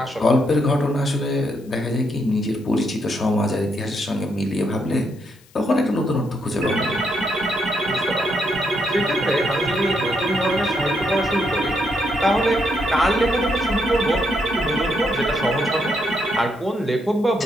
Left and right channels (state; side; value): noise; left; hiss, 29 dB below the sound